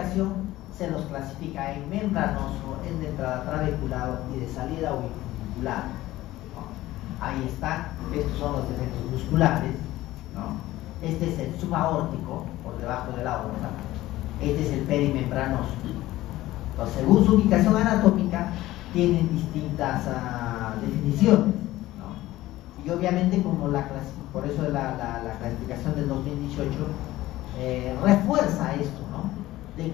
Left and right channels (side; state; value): right; quieter; 16.3 dB